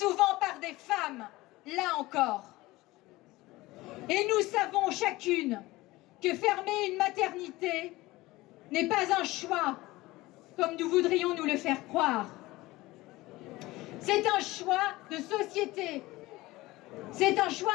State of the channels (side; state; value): right; quieter; 19.4 dB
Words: par des femmes, là encore. Et nous savons chacune que fermer une maternité n'est pas un choix, comme nous voudrions nous le faire croire. C'est un choix de société, c'est un